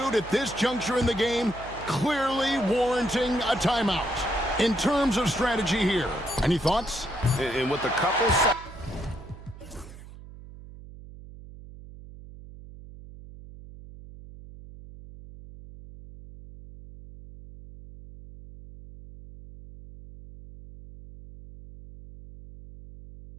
at this juncture in the game clearly warranting a timeout. In terms of strategy here, any thoughts? And with a couple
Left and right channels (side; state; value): right; noise; hum, 16 dB below the sound